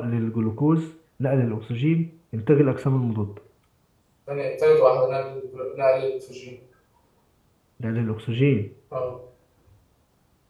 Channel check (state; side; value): identical; both; correlation 1.00